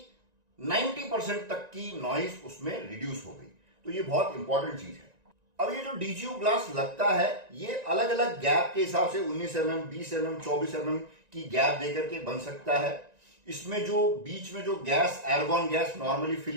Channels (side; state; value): left; late; 1.9 ms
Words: 90% तक की नॉइज उसमें रिड्यूस हो गई। तो ये बहुत इंपॉर्टेंट चीज है। अब ये जो DGU ग्लास लगता है ये अलग अलग गैप के हिसाब से 19 mm, 20 mm, 24 mm की गैप देकर के बन सकता है। इसमें जो बीच में जो गैस, एर्गॉन गैस नॉर्मली